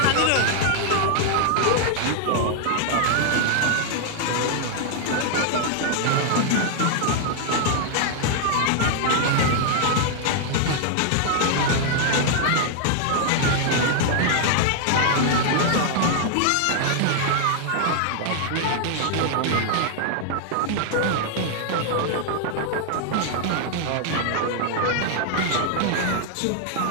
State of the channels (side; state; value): both; different; correlation 0.00